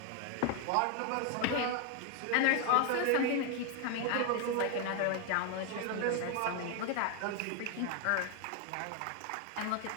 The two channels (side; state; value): both; different; correlation 0.01